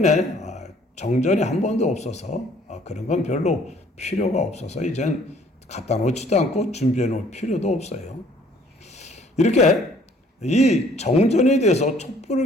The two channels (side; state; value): both; normal; correlation 0.58